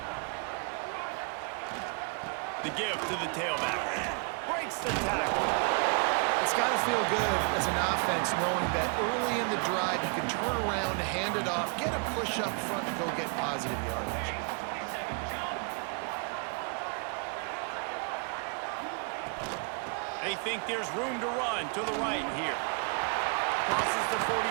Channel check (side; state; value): left; quieter; 37.9 dB